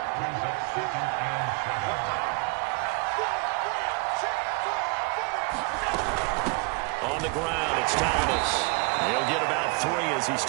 On the ground, it's Thomas. He'll get about 3 as he's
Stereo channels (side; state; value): left; quieter; 31.9 dB